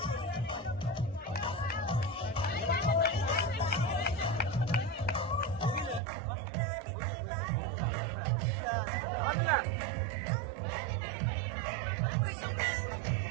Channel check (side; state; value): left; drops out; at 6.0 s